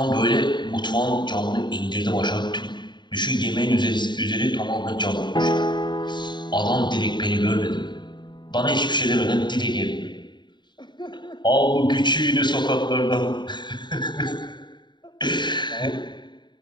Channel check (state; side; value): late; right; 0.22 ms